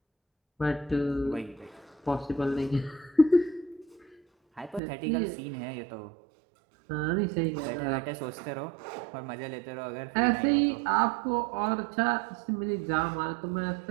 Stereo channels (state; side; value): drops out; left; at 4.8 s